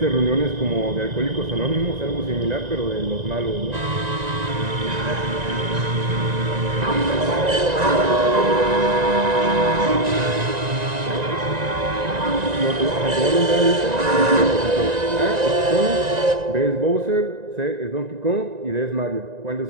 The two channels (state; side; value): late; left; 1.9 ms